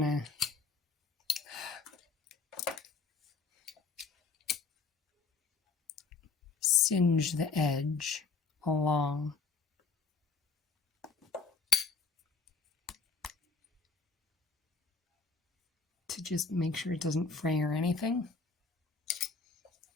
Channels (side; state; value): right; quieter; 4.6 dB